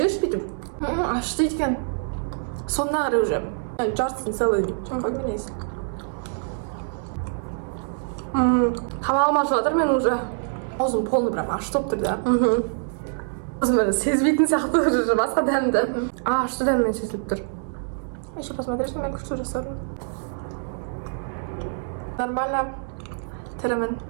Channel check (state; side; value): silent; left; digital silence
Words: бүйтіп. Ашты екен. Сонына қарай уже. Жартысын целый. Жаққа менейсің. Тамағым ашып жатыр мен уже. Аузым полный прям ашты болып тұр да. Өзім сезбейтін сияқты уже басқа дәмді. Ашты дәммен сезіліп тұр. Еще посмотришь на меня, что жасадым. Нормально. Тірімін,